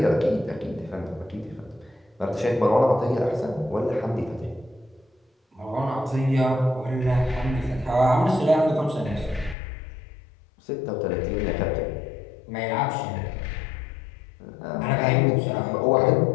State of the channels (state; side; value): drops out; right; at 9.6 s